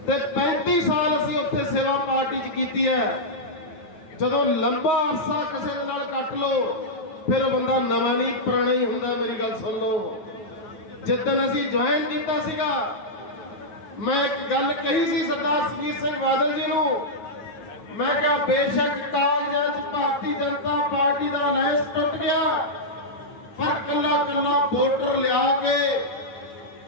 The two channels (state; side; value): late; right; 9.5 ms